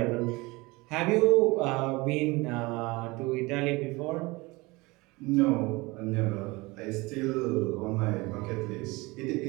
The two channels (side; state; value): left; quieter; 23.5 dB